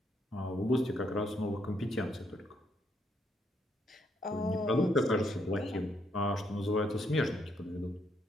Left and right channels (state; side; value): normal; both; correlation 0.74